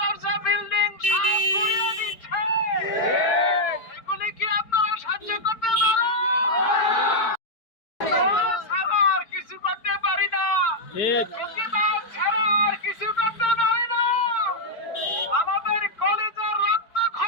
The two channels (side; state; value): right; late; 4.4 ms